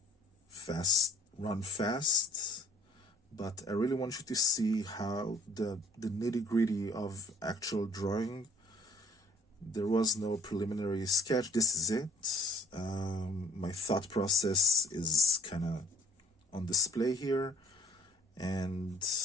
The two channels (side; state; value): both; normal; correlation 0.56